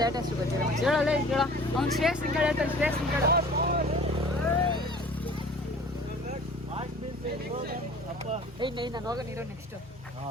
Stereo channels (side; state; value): both; normal; correlation 0.46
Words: ಅಷ್ಟು ಗೊತ್ತಿಲ್ಲ. ಹೇಳಲ್ಲ, ಹೇಳ. ಅವ್ನು ಶ್ರೇಷ್ಠ ಕೇಳ ಶ್ರೇಷ್ಠ ಕೇಳ. ನಾನು ಹೋಗ ನೀರು ನೆಕ್ಸ್ಟ್